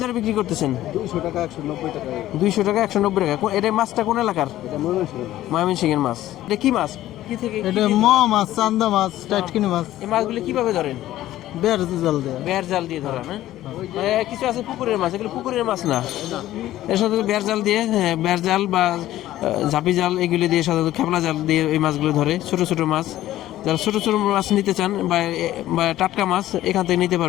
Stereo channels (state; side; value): quieter; right; 14.2 dB